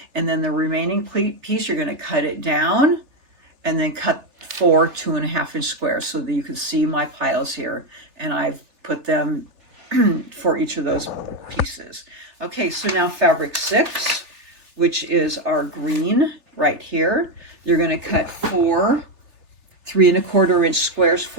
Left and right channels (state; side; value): late; left; 3.4 ms